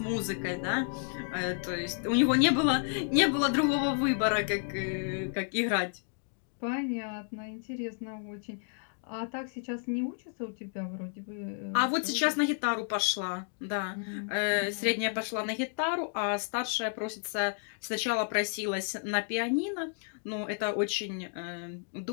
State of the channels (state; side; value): silent; right; 57 dB below the other